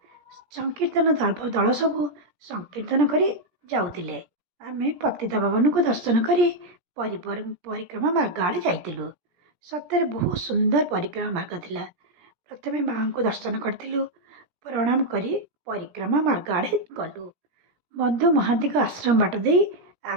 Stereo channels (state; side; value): late; left; 17 ms